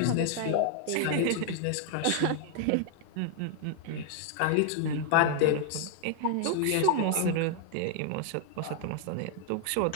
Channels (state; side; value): different; both; correlation 0.00